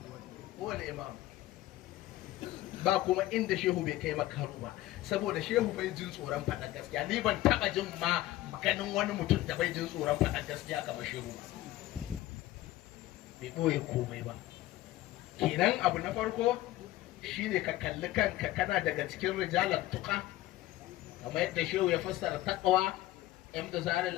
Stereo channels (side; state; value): right; quieter; 15.9 dB